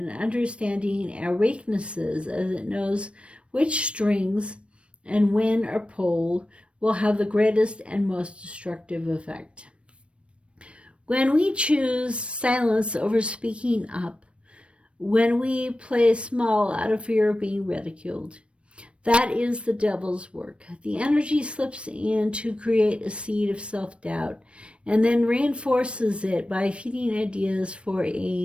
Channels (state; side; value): late; left; 0.060 ms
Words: understanding our weaknesses, as it knows which strings and when are pulled will have the greatest and most destructive effect. When we choose silence over speaking up, when we play small out of fear of being ridiculed, that is the devil's work. The energy slips in to create a seed of self-doubt and then reinforces it by feeding ideas for